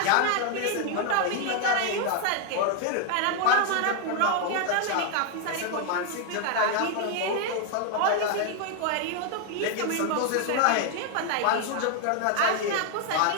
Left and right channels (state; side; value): different; both; correlation 0.00